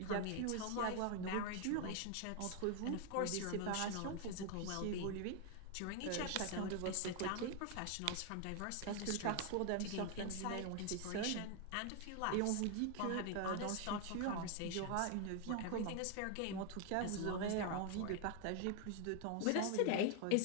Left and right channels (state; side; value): different; both; correlation 0.01